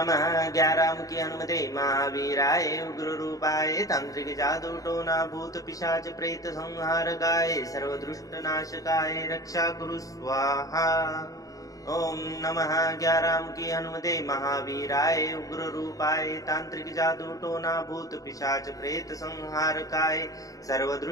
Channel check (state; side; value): late; right; 0.17 ms